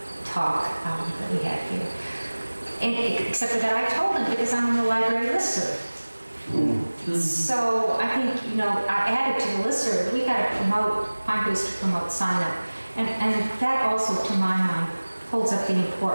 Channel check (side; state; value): both; inverted; correlation -1.00